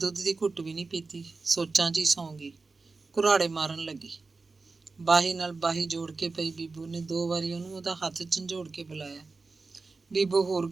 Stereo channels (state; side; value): quieter; left; 4.0 dB